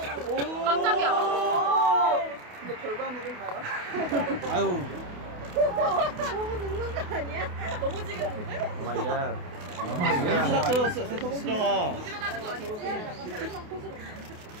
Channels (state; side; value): late; left; 28 ms